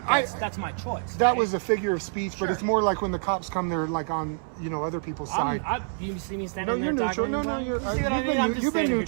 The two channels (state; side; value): silent; left; 60 dB below the other